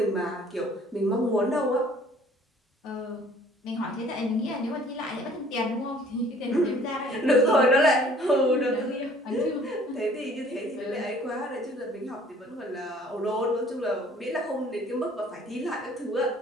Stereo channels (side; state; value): both; normal; correlation 0.55